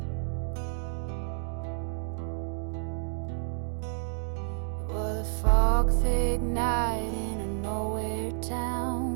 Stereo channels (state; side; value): silent; left; digital silence